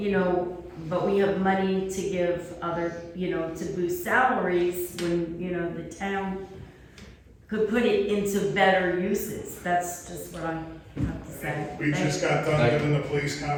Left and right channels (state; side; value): identical; both; correlation 1.00